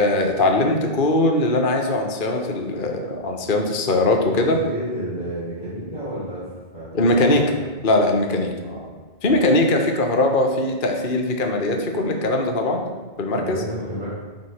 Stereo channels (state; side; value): late; right; 2.4 ms